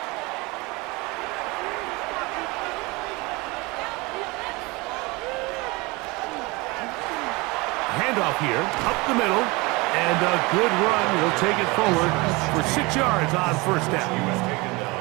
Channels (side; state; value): left; quieter; 24.9 dB